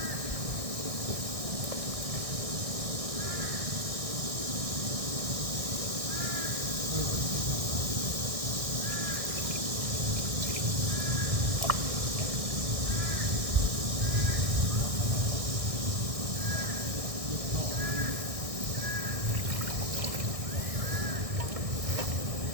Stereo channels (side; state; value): left; late; 1.6 ms